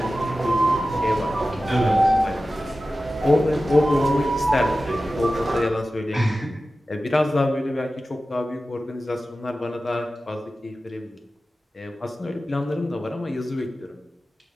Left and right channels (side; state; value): both; normal; correlation 0.95